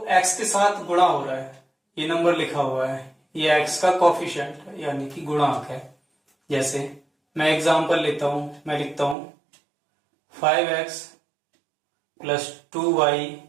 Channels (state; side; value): drops out; left; at 9.2 s